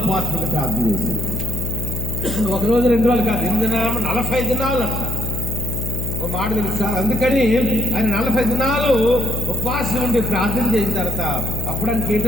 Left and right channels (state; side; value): noise; left; hum, 3 dB below the sound